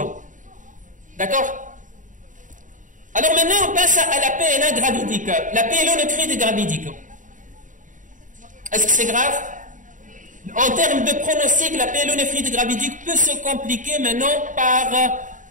D'accord? Alors maintenant, on passe à la PNA gravidique, la pyélonéphrite gravidique. Est-ce que c'est grave? En termes de pronostic, la pyélonéphrite gravidique peut se compliquer maintenant par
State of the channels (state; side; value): late; left; 0.37 ms